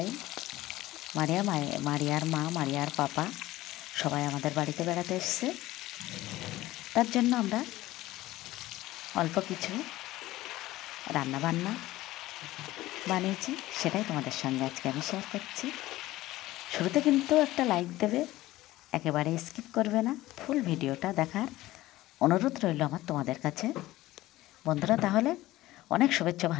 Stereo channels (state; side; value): quieter; right; 16.8 dB